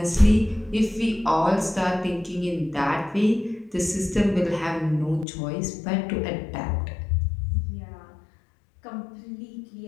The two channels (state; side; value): drops out; right; at 5.2 s